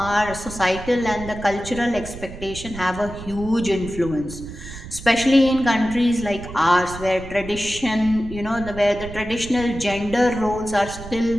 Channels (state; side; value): noise; right; rumble, 12 dB below the sound